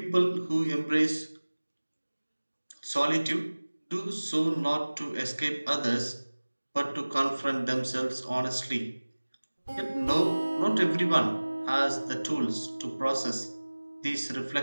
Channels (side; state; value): both; inverted; correlation -1.00